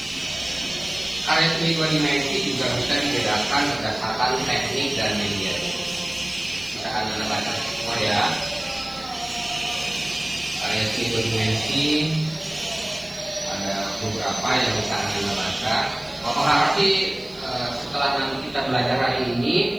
karya seni 2 dimensi juga bisa dibedakan berdasarkan teknik dan media. Kita akan baca semua ya. Karya seni 2 dimensi ada beberapa yang bisa anda baca. Bapak harap sih setelah nanti kita belajar hari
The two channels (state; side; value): noise; right; hiss, 28 dB below the sound